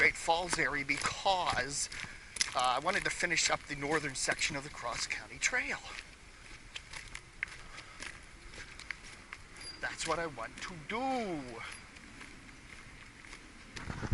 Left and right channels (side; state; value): both; identical; correlation 1.00